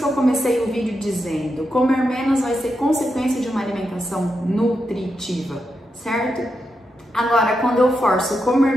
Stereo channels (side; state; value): both; normal; correlation 0.86